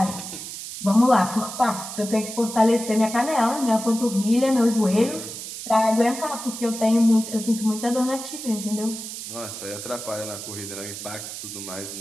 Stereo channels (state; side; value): noise; right; hiss, 9 dB below the sound